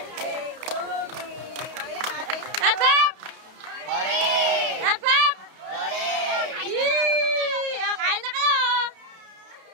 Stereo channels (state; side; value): late; left; 31 ms